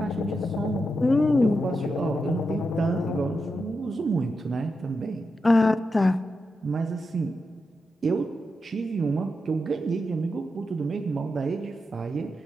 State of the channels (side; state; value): both; normal; correlation 0.87